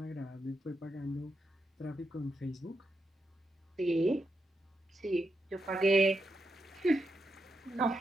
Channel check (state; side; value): normal; both; correlation 0.85